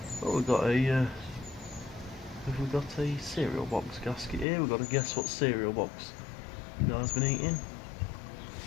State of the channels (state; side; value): drops out; right; at 4.5 s